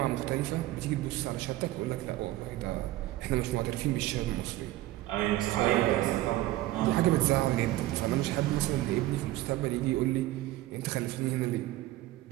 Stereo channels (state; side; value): quieter; left; 16.4 dB